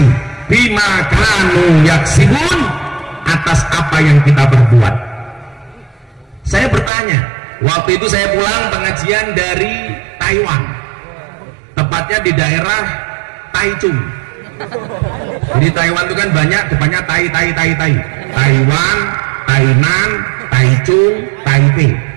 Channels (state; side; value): drops out; left; at 6.9 s